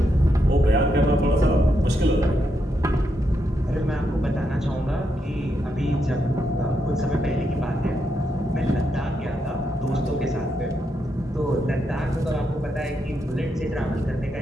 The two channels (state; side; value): normal; both; correlation 0.81